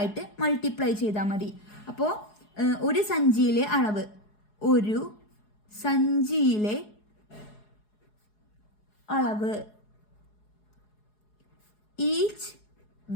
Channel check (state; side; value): late; right; 4.8 ms